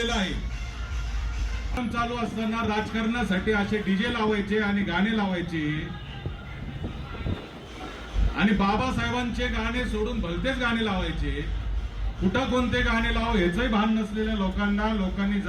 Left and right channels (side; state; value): both; identical; correlation 1.00